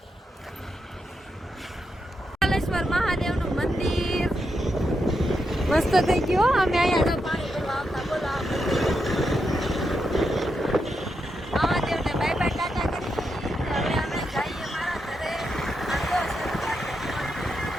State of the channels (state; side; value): normal; both; correlation 0.84